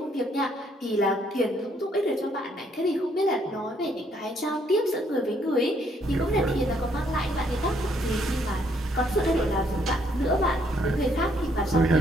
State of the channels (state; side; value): normal; both; correlation 0.69